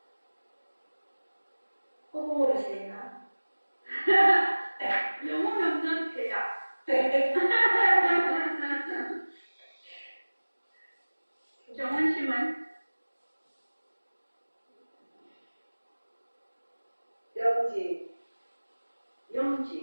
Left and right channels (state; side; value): inverted; both; correlation -1.00